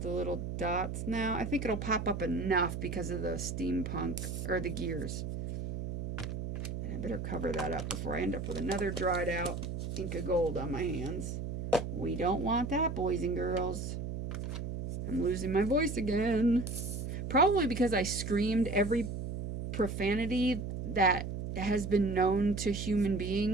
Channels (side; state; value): right; noise; hum, 5 dB below the sound